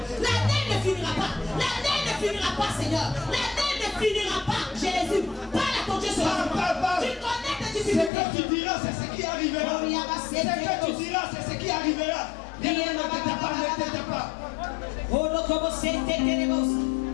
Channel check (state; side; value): drops out; right; at 8.1 s